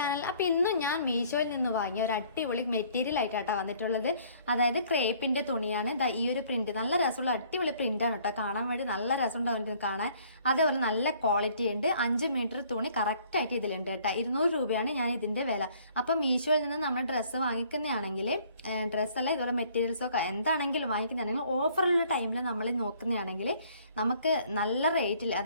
അപ്പൊ ഇന്നും ഞാൻ മീഷോയിൽ നിന്ന് വാങ്ങിയ ഒരു അടിപൊളി മെറ്റീരിയൽ ആയിട്ടാണ് വന്നിട്ടുള്ളത്. അതായത് ക്രേപ്പിന്റെ തുണിയാണ്. ഈ ഒരു പ്രിന്റ് നല്ല രസമുള്ള അടിപൊളി പ്രിന്റ് ആണ് കേട്ടോ. കാണാൻ വേണ്ടി നല്ല രസമുണ്ടാവും കാണാൻ. അതേപോലെ നല്ല ക്വാളിറ്റി ഉണ്ട്. 5 മീറ്റർ തുണി കറക്റ്റ് ആയിട്ട് ഇതിലുണ്ട് കേട്ടോ. 200 രൂപയാണ് ഞാൻ ഇതിന്റെ വില. അപ്പൊ മീഷോയിൽ നിന്ന് നമ്മൾ ഡ്രസ്സ് വാങ്ങിക്കുന്നതാണെങ്കിൽ ഡ്രസ്സല്ല ഇതുപോലെ മെറ്റീരിയൽസോ എന്താണെങ്കിലും വാങ്ങിക്കുന്നതാണെങ്കിൽ ഓഫറുള്ള ടൈമിൽ നമ്മൾ നോക്കുന്നതാണെങ്കിൽ നമുക്ക് നല്ല റേറ്റിൽ,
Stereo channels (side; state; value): both; inverted; correlation -0.59